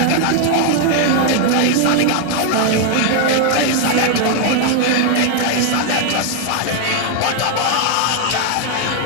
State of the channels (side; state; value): both; different; correlation 0.00